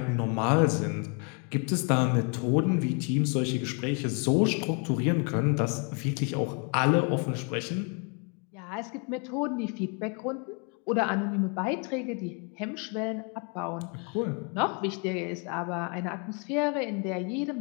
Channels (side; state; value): right; quieter; 35.8 dB